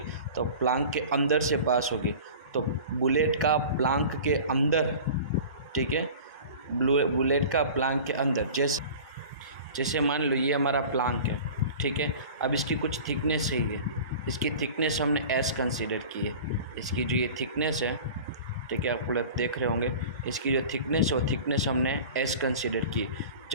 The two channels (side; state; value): both; inverted; correlation -0.39